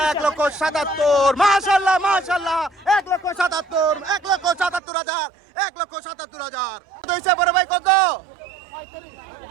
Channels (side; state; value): left; drops out; at 4.8 s